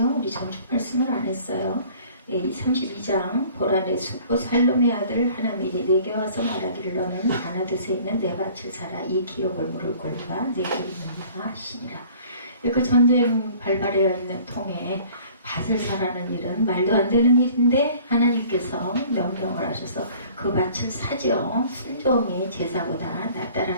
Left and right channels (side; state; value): both; inverted; correlation -0.51